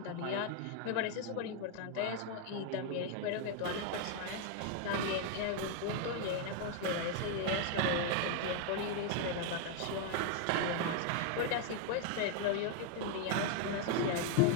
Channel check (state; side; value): different; both; correlation 0.00